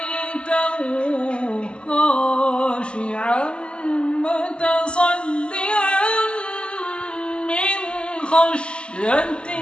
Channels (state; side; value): late; right; 0.052 ms